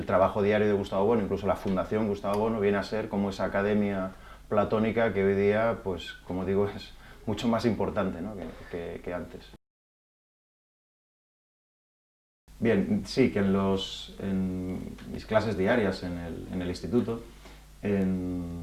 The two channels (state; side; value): identical; both; correlation 1.00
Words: trabajo diario de Gustavo Bueno, incluso la Fundación Gustavo Bueno, viene a ser como esa academia platónica que hoy día, pues como digo, es mucho más importante, ¿no? que antes. Bien, sí, que en mis clases diarias en el instituto,